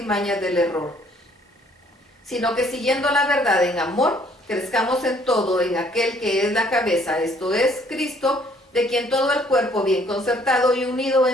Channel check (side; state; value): both; normal; correlation 0.62